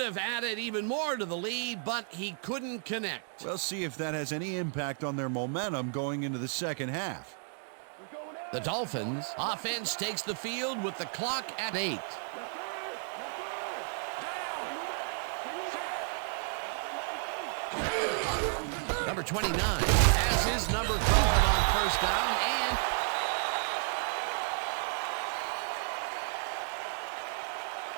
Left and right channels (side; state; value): left; silent; 56 dB below the other